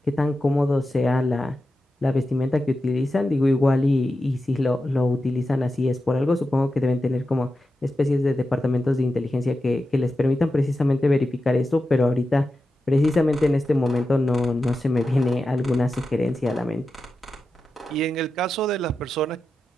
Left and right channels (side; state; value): both; normal; correlation 0.91